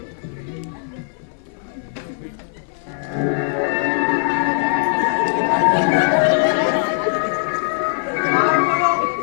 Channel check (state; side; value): silent; right; 61 dB below the other